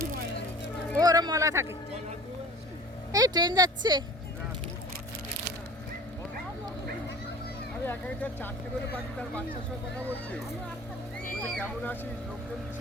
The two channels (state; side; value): normal; both; correlation 0.44